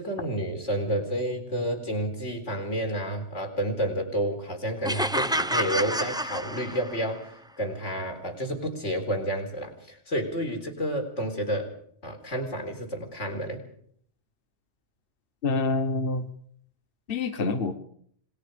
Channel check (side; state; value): both; normal; correlation -0.15